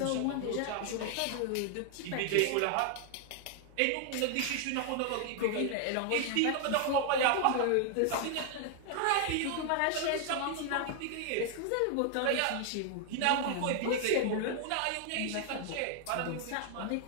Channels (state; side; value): different; both; correlation 0.00